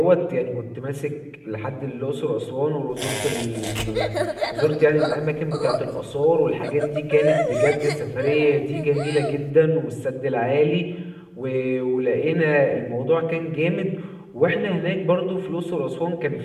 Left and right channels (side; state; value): both; identical; correlation 1.00